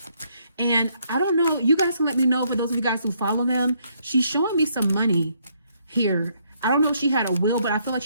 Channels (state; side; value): inverted; both; correlation -0.71